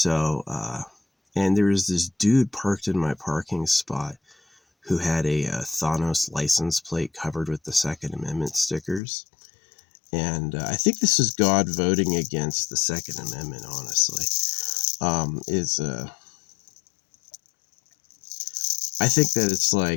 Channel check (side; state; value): right; drops out; at 9.0 s